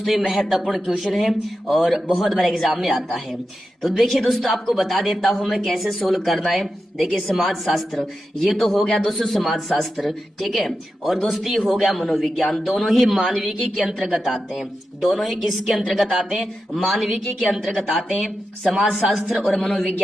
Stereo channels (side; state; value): both; normal; correlation 0.90